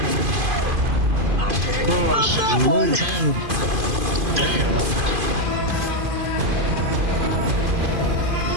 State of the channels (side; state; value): left; late; 2.5 ms